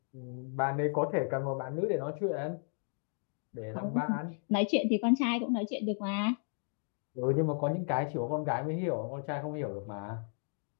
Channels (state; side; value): silent; right; 55 dB below the other